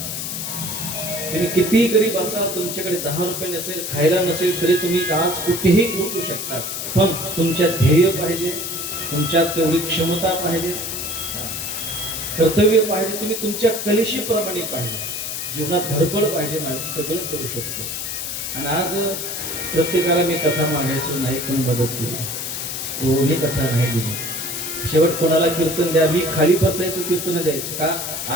तुम्ही कितीही गरीब असाल, तुमच्याकडे 10 रुपये नसेल, खायला नसेल, तरी तुम्ही आज कुठेही पोहोचू शकता. पण तुमच्यात ध्येय पाहिजे, तुमच्यात तेवढी क्षमता पाहिजे, कर्तव्य पाहिजे, तुम्ही तुमच्या कलेशी प्रमाणे पाहिजे, जीवनात धडपड पाहिजे. सगळं करू शकतो. आणि आज प्रत्येकाला मी कथा मागायचो, नाही कोणी मदत केली, कोणी कथा नाही दिली. शेवट कोणाला कीर्तन द्या, मी खाली बसायचो, कीर्तन द्यायचो. का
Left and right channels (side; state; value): left; noise; hiss, 4 dB below the sound